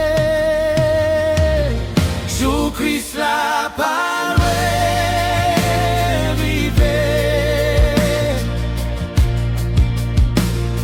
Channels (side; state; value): both; identical; correlation 1.00